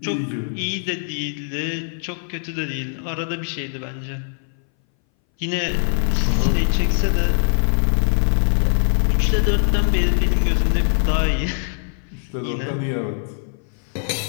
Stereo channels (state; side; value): silent; right; 61 dB below the other